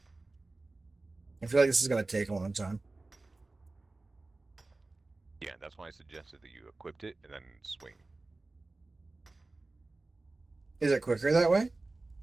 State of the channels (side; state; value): left; quieter; 3.2 dB